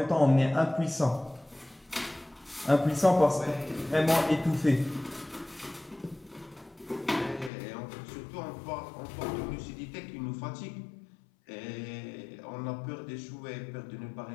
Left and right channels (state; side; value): drops out; right; at 7.5 s